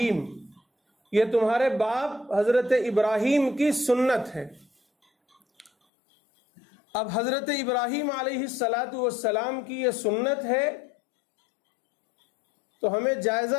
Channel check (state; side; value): drops out; right; at 5.7 s